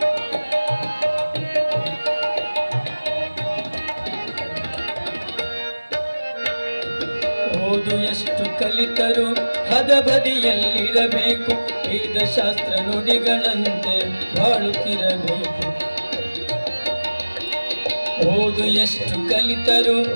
ಓದು ಎಷ್ಟು ಕಲಿತರು ಹದಬದಿಯಲ್ಲಿರಬೇಕು, ವೇದಶಾಸ್ತ್ರ ನುಡಿಗಳಂತೆ ಬಾಳುತ್ತಿರಬೇಕು. ಓದು ಎಷ್ಟು ಕಲಿತರು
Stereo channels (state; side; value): inverted; both; correlation -1.00